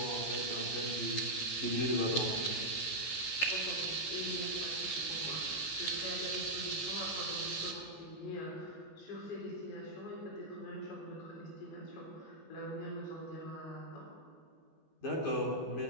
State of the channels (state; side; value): late; right; 14 ms